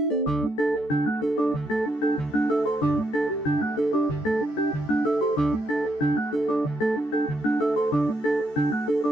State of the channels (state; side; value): late; right; 14 ms